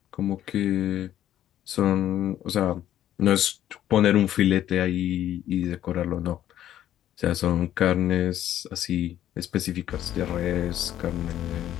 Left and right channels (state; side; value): quieter; right; 11.9 dB